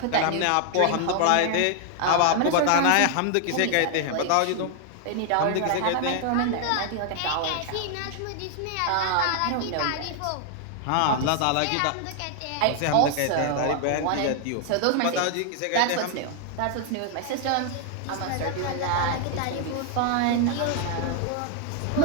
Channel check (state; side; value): different; both; correlation 0.00